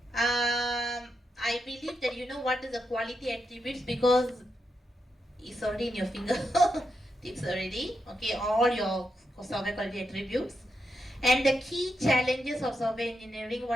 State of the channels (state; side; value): normal; both; correlation 0.84